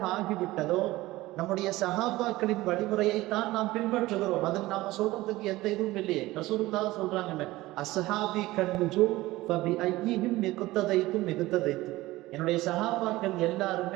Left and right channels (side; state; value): left; quieter; 18.3 dB